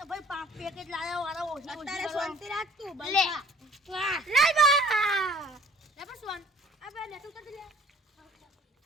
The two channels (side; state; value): both; normal; correlation 0.53